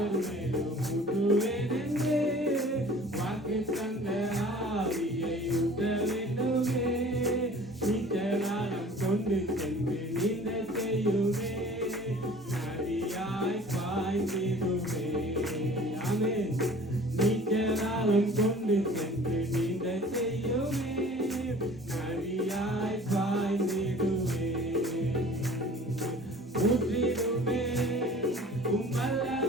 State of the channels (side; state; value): both; normal; correlation 0.47